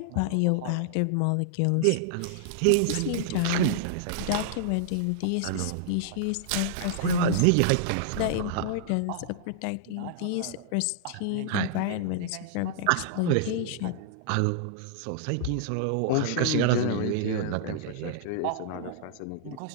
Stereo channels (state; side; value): different; both; correlation -0.01